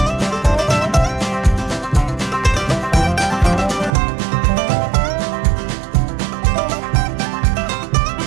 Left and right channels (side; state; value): left; drops out; at 4.0 s